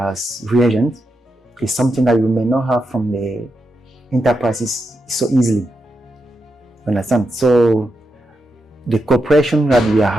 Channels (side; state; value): both; normal; correlation 0.86